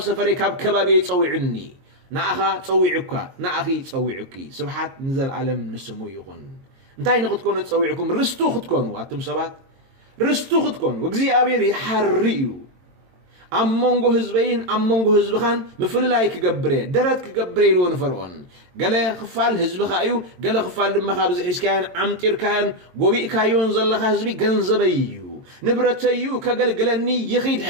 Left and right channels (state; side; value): late; left; 22 ms